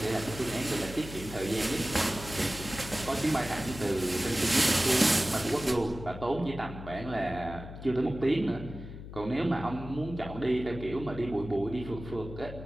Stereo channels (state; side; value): noise; left; hum, 11 dB below the sound